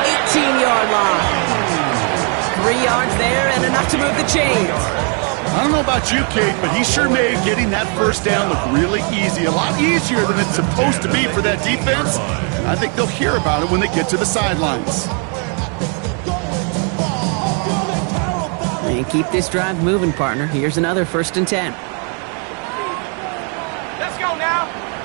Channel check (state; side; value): quieter; left; 39.0 dB